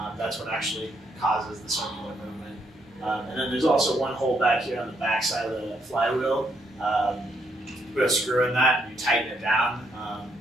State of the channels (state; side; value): normal; both; correlation 0.75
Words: That's what actually causes the circular movement. And then there's also one hole back here on the back side of the flywheel. Put a screw in that, and you tighten it down